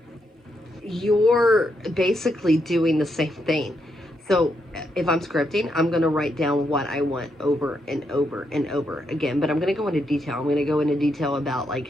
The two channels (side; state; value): both; normal; correlation 0.80